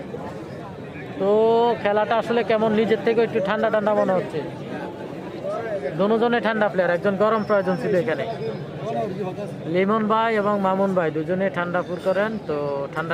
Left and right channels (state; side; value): identical; both; correlation 1.00